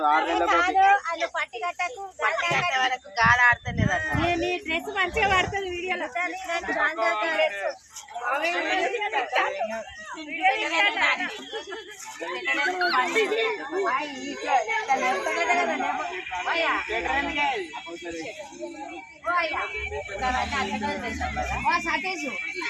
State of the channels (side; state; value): both; identical; correlation 1.00